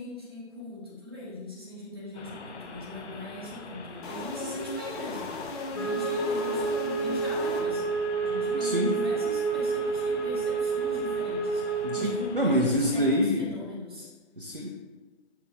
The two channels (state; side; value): normal; both; correlation 0.07